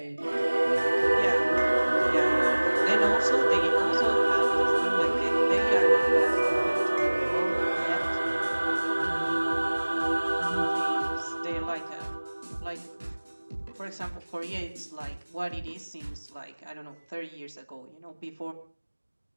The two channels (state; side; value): inverted; both; correlation -1.00